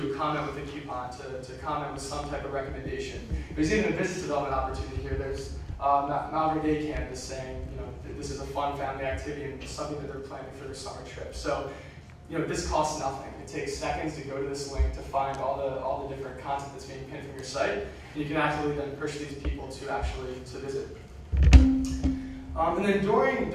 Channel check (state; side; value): identical; both; correlation 1.00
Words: comment with a coupon, to comment with some type of recommendation. There's even a business development opportunity here. There's Malvern Day Campus saying, this is a fun family activity and something that they're planning for their summer trip. So, this costs nothing. It takes seconds to go to this link to find all the different content that's being pinned from your site, and you can actually then push these people to visit. And then during